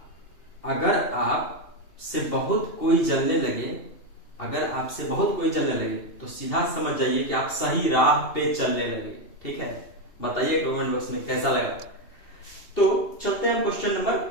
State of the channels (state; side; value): late; right; 2.7 ms